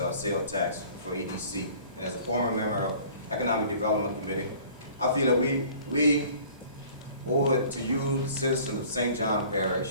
sales tax for EDC. And as a former member of Economic Development Committee, I feel that we owe it to you, the citizens of St. John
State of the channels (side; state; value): both; inverted; correlation -0.50